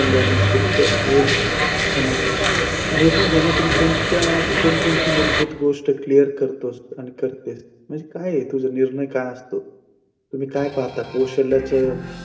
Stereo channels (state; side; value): identical; both; correlation 1.00